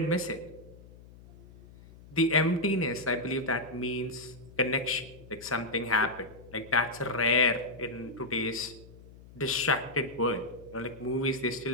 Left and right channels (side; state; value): left; noise; hum, 20 dB below the sound